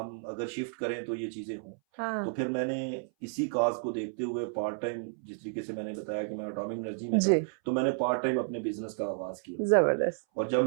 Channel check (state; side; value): silent; left; 57 dB below the other